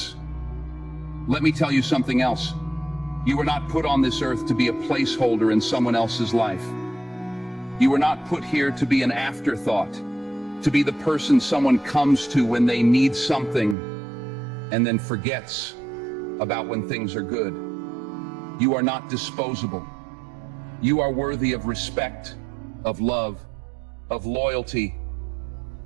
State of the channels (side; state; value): left; drops out; at 13.8 s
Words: Let me tell you something else. You were not put on this earth to be a placeholder in someone else's life. You were not put here to be an afterthought, to be the person someone comes to when they need something and then forgets about when things are good. You are not disposable. You are worthy of respect, of love, of loyalty.